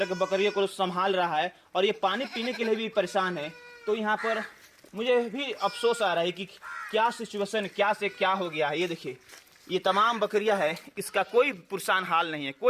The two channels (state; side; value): identical; both; correlation 1.00